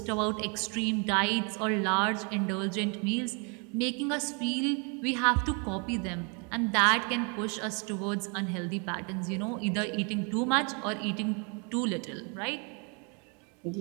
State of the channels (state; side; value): quieter; left; 35.3 dB